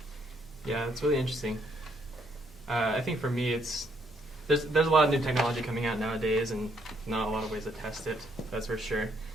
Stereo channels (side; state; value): both; normal; correlation 0.71